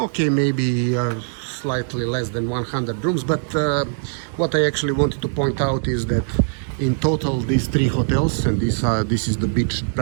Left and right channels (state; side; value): silent; left; digital silence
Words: maybe slightly less than 100 rooms. But what I actually wanted to point out is that in total, these 3 hotels, and this is the beach,